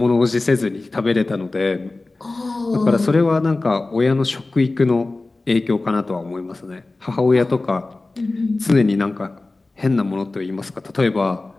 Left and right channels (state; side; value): quieter; right; 3.2 dB